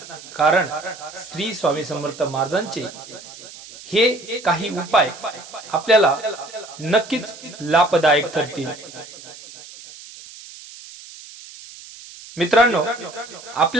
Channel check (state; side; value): noise; right; hiss, 17 dB below the sound